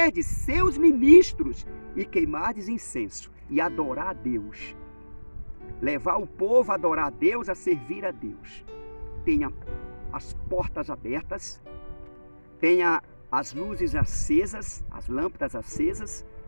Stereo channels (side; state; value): both; inverted; correlation -1.00